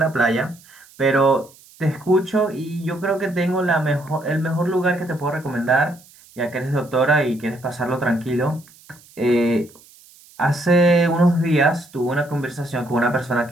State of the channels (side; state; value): right; noise; hiss, 25 dB below the sound